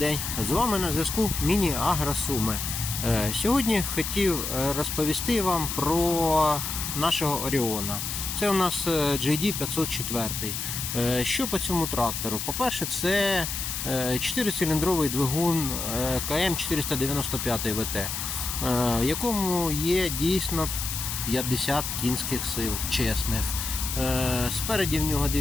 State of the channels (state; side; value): noise; left; hiss, 4 dB below the sound